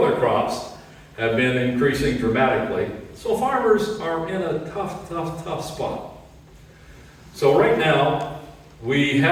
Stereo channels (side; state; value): both; identical; correlation 1.00